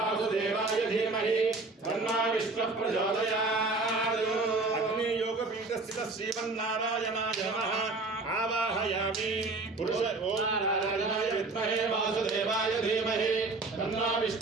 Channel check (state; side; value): quieter; left; 3.5 dB